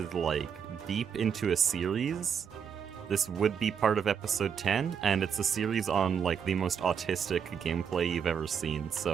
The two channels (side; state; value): left; quieter; 7.3 dB